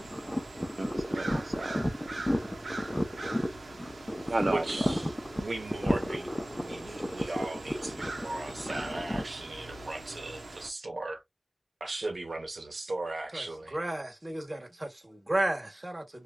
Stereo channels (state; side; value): normal; both; correlation 0.98